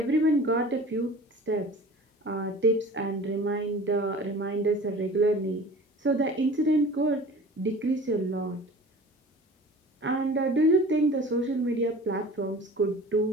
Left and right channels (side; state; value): both; normal; correlation 0.41